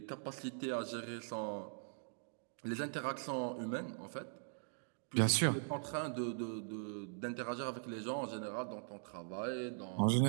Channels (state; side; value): silent; left; digital silence